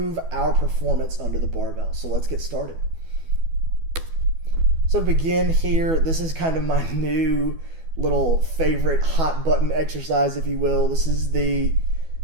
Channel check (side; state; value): left; late; 12 ms